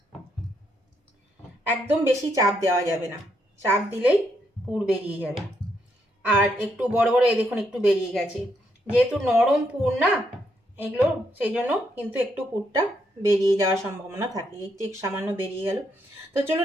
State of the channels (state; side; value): normal; both; correlation 0.77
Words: একদম বেশি চাপ দেওয়া যাবে না, চাপ দিলেই পুর বেরিয়ে যাবে। আর একটু বড় বড় এই দেখুন একটু বেরিয়ে গেছে, যেহেতু নরম পুর না এগুলো, সেই জন্য কিন্তু একটু পুরটা বেরিয়ে যাওয়ার সম্ভাবনা থাকে। এই ঠিক সামান্য বেরিয়ে গেল। তো